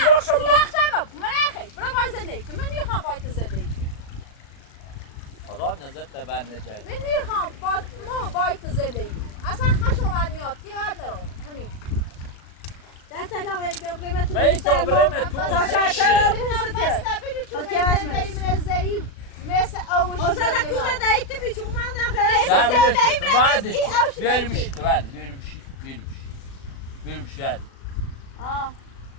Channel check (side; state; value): right; late; 36 ms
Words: شد من اخی برو باید زندگی کن من میخوام باید زندگی کن خدا نظر تبر نجای من میخوام باید زندگی کن اصلا خشمانیات دیار نرو همین دست آقای بگرمه تو بایی بیستر تابره تو تا شرطه بسته بگو چون من زندگی من ضعیف مثل اوشی اصلا کوزه دایت بیچو من نخیر ده زندگی بیشتر من بعد ای اوشی بیاری بشید بعد بیاری بشید